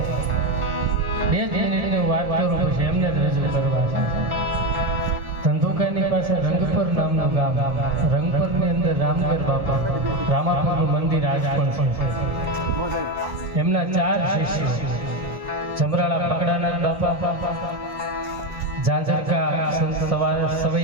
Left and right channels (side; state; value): left; late; 1.6 ms